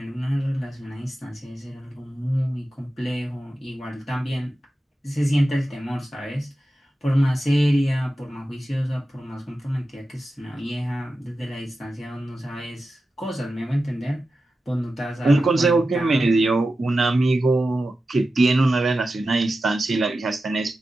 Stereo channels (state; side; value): normal; both; correlation 0.92